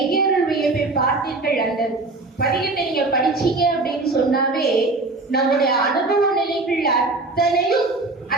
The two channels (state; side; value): quieter; left; 3.2 dB